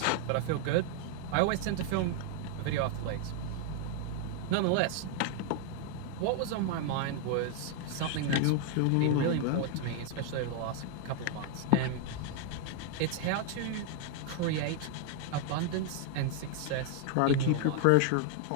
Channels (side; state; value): both; different; correlation 0.00